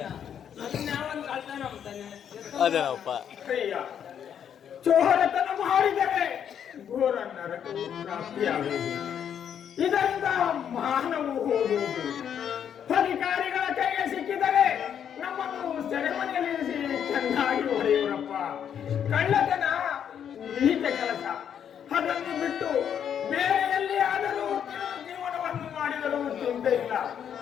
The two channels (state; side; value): quieter; right; 8.7 dB